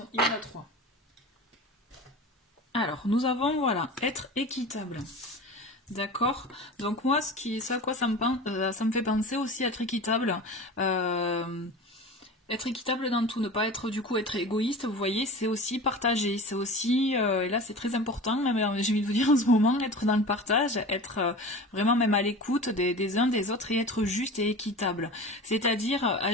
y en a trois. Alors, nous avons, voilà, être équitable. D'accord. Donc moi, ça à quoi ça me fait penser aussi, être équitable. Être équitable dans tout, ne pas être du coup être égoïste, vous voyez, c'est aussi partager, c'est aussi, et là c'est très important, même j'ai envie de vous dire en ce moment, être dans le partage, être vraiment même à l'écoute des uns des autres et être juste et équitable. C'est-à-dire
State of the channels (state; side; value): normal; both; correlation 0.34